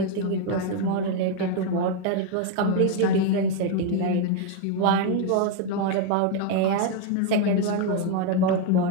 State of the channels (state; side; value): different; both; correlation 0.01